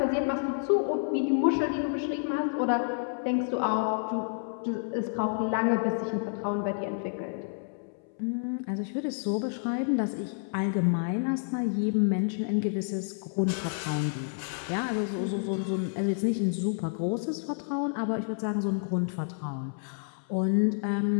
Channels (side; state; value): right; silent; 58 dB below the other